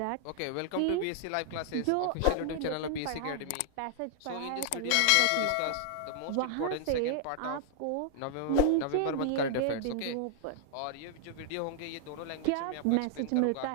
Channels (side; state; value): both; different; correlation 0.00